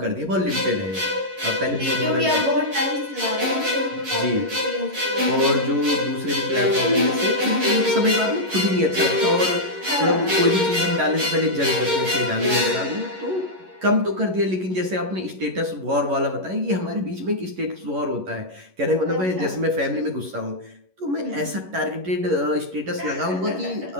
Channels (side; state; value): left; late; 11 ms